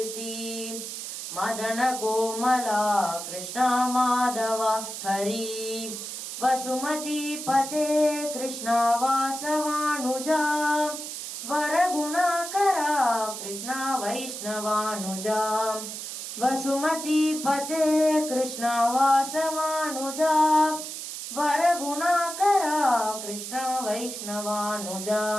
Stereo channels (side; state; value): right; noise; hiss, 7 dB below the sound